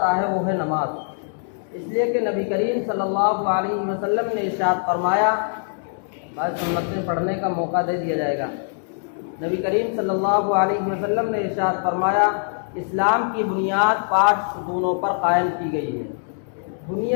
ہے وہ ہے نماز. اس لیے کہ نبی کریم صلی اللہ علیہ وسلم نے ارشاد فرمایا، بعض سنتیں پڑھنے کا موقع دے دیا جائے گا. نبی کریم صلی اللہ علیہ وسلم نے ارشاد فرمایا، اسلام کی بنیاد 5 ستونوں پر قائم کی گئی ہے. بنی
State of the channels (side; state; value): right; silent; digital silence